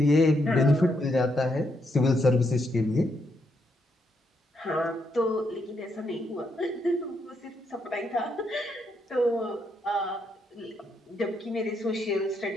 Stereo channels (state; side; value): normal; both; correlation 0.78